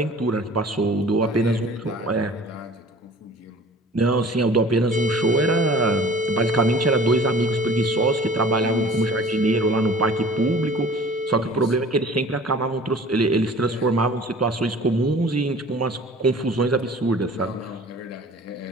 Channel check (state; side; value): normal; both; correlation 0.47